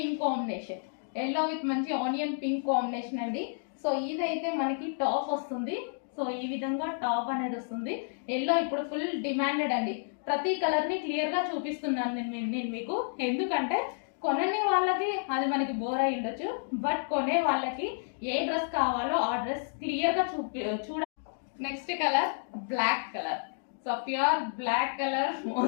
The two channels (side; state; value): right; silent; digital silence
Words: combination, yellow with మంచి onion pink combination అండి. So ఇదైతే మనకి top వస్తుంది. సో ఈ విధంగా టాప్ అనేది వస్తుంది. ఎల్లో ఇప్పుడు ఫుల్ డిమాండెడ్ అండి. ప్రతి కలర్ ని క్లియర్ గా చూపిస్తున్నాను నేను మీకు, ఎందుకంటే కొనని వాళ్ళకి అది మనకి బోర్ అయి ఉండొచ్చు, బట్ కొనే వాళ్ళకి ఏ డ్రెస్ కావాలో ఆ డ్రెస్ క్లియర్ గా చూడ. Next colour black colour. So pure black colour,